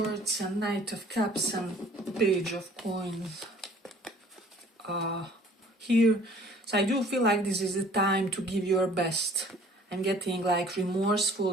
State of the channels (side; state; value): both; normal; correlation 0.53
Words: and Knight of Cups and Page of Coins here. So I do feel like this is the time to give your best. I'm getting like